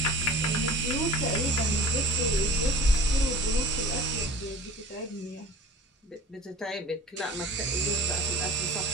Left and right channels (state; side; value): normal; both; correlation 0.42